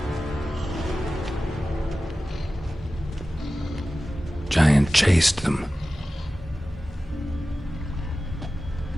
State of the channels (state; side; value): normal; both; correlation 0.95